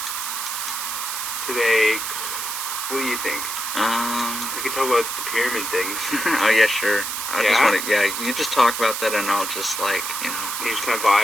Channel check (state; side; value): noise; right; hiss, 4 dB below the sound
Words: today, what do you think? We could talk about the pyramid thing. Oh yeah, sure. I just want to, you just talk about that and I'll just You just kind of